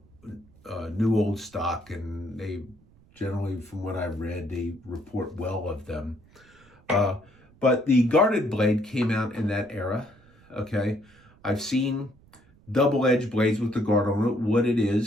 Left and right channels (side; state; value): right; noise; rumble, 28 dB below the sound